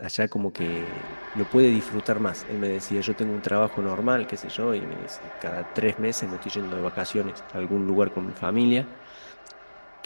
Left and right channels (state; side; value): inverted; both; correlation -1.00